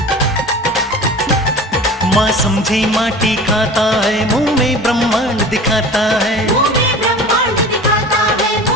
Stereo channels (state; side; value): normal; both; correlation 0.38